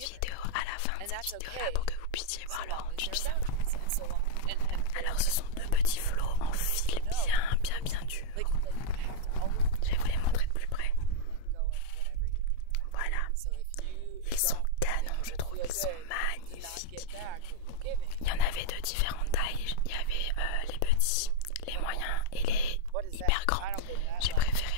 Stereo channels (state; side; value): different; both; correlation 0.00